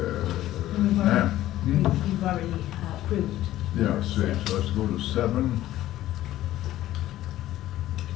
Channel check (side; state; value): right; quieter; 14.3 dB